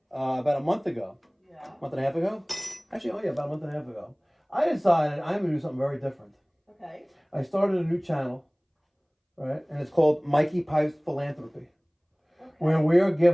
about a month ago, month and a half ago? Actually, about a month and a half ago, I decided I'm going to do something very different. Okay. I started a new channel, right? And it's called Mikey Pipes Philanthropy, where we're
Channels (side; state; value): both; identical; correlation 1.00